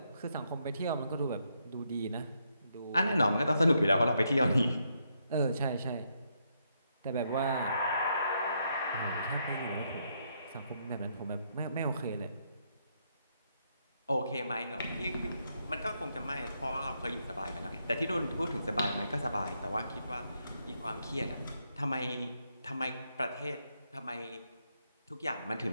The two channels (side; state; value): both; inverted; correlation -0.77